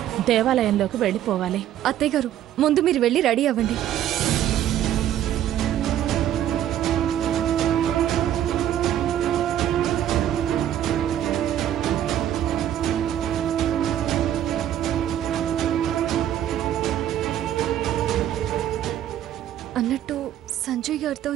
దేవాలయంలోకి వెళ్ళిపోవాలి. అత్తయ్య గారు, ముందు మీరు వెళ్ళి రెడీ అవ్వండి. అన్నట్టు సంజయ్ గారితో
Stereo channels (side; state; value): left; quieter; 11.3 dB